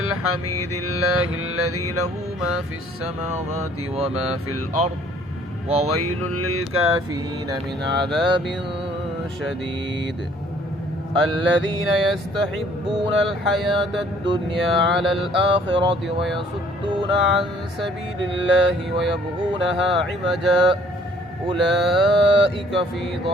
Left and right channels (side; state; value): both; normal; correlation 0.59